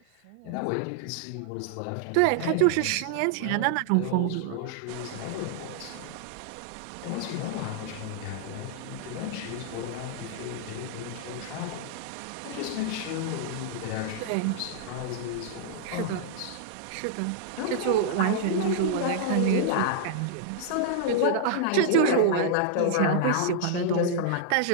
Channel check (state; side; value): different; both; correlation -0.01